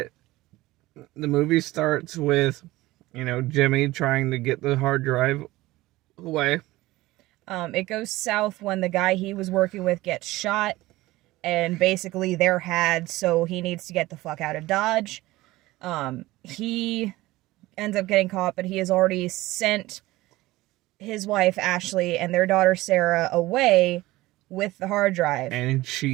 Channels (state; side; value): quieter; left; 18.5 dB